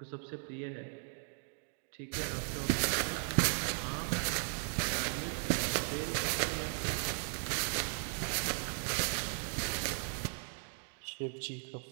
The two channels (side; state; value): left; silent; 53 dB below the other